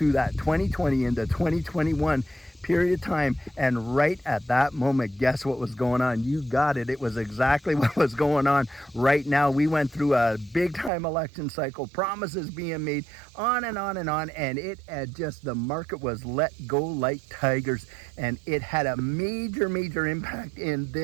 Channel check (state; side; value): drops out; left; at 10.9 s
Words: that 2020 into 2021 period of time. And right at that moment, guess what was going on? You got it. It was exactly what was going on right now. We went through a big time election cycle, promises being made, on and on and on. And it had just, the market was let go like tigers. And it had a major impact in